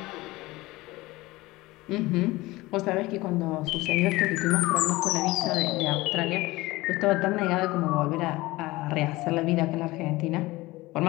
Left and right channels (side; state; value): right; quieter; 20.0 dB